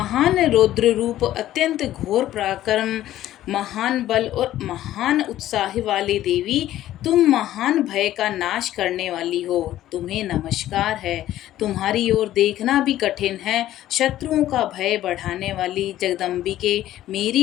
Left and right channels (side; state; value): right; quieter; 13.5 dB